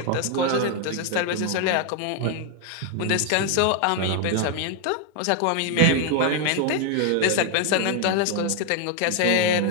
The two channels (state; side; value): different; both; correlation 0.00